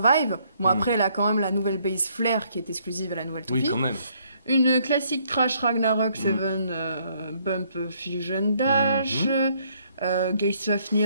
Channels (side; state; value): both; inverted; correlation -0.68